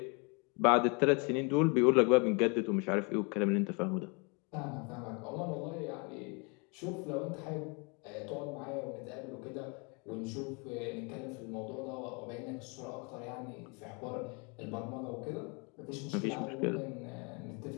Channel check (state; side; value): quieter; right; 32.2 dB